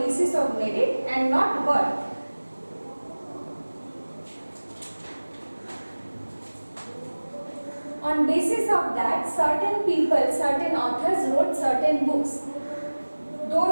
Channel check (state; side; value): inverted; both; correlation -1.00